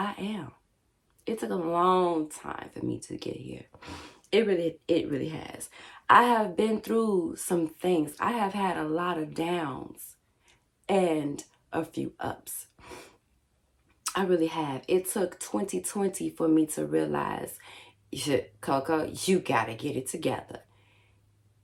am. It took a long time for me to get here. It really has. I have been through some things. I have had a lot of downs and a few ups. I really have. It took 2020 for me to realize, Coco, you gotta get it together.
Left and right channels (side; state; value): both; identical; correlation 1.00